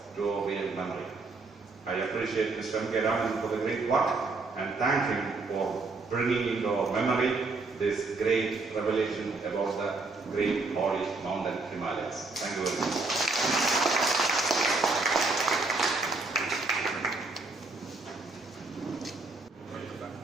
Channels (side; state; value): left; quieter; 3.7 dB